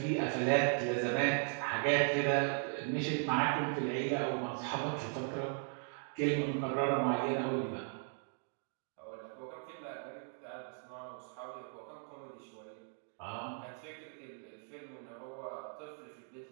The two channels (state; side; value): silent; left; 53 dB below the other